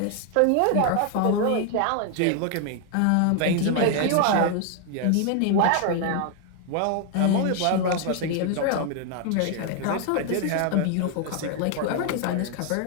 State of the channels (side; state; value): both; different; correlation 0.00